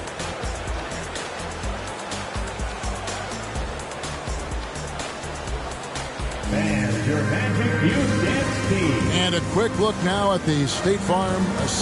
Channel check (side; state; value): both; identical; correlation 1.00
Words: And a quick look now at the State Farm